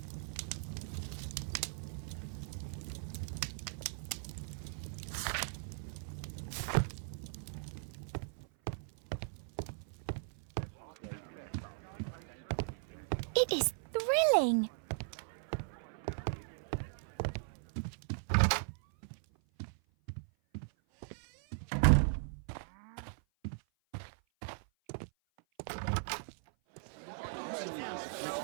It is thrilling.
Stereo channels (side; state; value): left; silent; 52 dB below the other